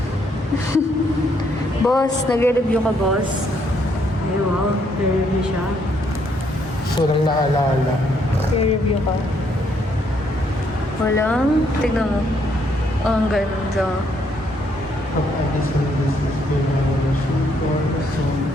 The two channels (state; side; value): normal; both; correlation 0.71